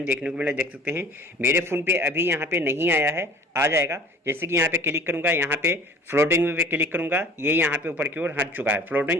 देखने को मिला, देख सकते हैं। मेरे फ़ोन पे अभी यहाँ पे नहीं आया है, आ जाएगा। जैसे कि यहाँ पे क्लिक करूँगा, यहाँ पे फ्लोटिंग पे क्लिक करूँगा, ये यहाँ पे ऊपर की ओर हट चुका है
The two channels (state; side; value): normal; both; correlation 0.47